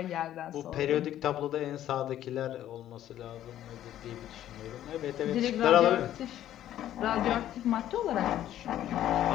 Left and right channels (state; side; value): quieter; right; 12.1 dB